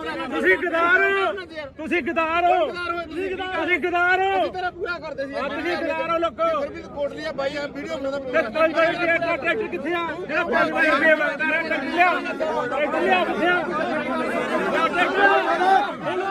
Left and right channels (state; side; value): identical; both; correlation 1.00